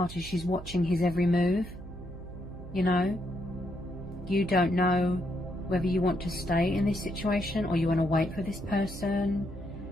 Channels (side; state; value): right; noise; hum, 13 dB below the sound